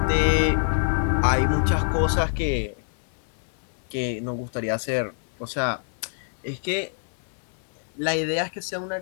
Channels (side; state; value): right; silent; 57 dB below the other